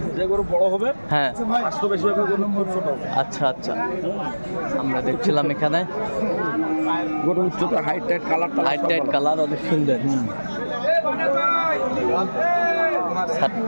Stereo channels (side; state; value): both; inverted; correlation -1.00